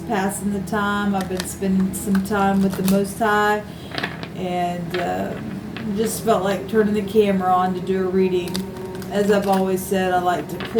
passing the time. I've been spending some time with the Most High, and just felt like turning the camera on to do a reading. As I've always said, I like to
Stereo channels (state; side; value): identical; both; correlation 1.00